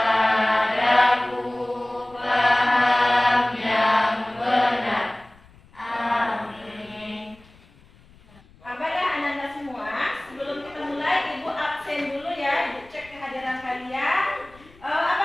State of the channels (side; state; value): left; noise; rumble, 26 dB below the sound